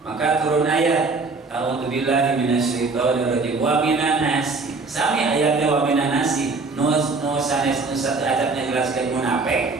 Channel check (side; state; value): left; quieter; 3.9 dB